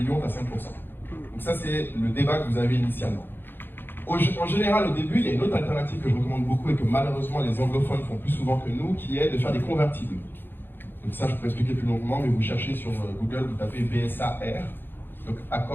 tu as 5%. Donc, ça, c'est le débat que vous avez initialement. En général, au début, il y a une autre alternative que je recommande beaucoup et que malheureusement les anglophones font plus souvent que nous, qui est de faire des convertibles. Donc ça, je peux expliquer plus longuement, mais vous cherchez sur Google, vous tapez BSAR, donc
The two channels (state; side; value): late; right; 0.099 ms